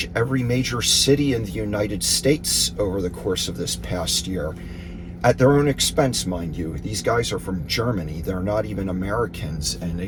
every major city in the United States over the course of this past year, at their own expense, mind you. These guys are from Germany. They're not even Americans, and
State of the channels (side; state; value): both; identical; correlation 1.00